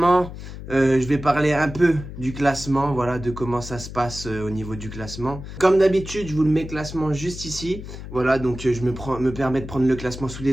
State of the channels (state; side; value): noise; left; hum, 11 dB below the sound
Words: je vais parler un peu du classement, voilà, de comment ça se passe au niveau du classement. Comme d'habitude, je vous le mets classement juste ici. Voilà, donc je me permets de prendre le classement sous